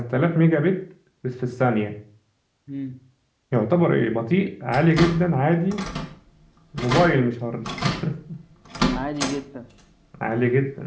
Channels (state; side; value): identical; both; correlation 1.00